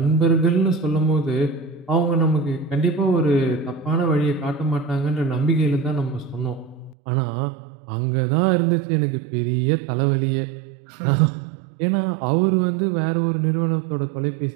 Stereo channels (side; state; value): left; drops out; at 7.0 s